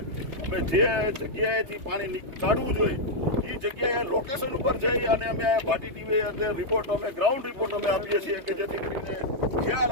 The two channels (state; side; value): late; left; 3.3 ms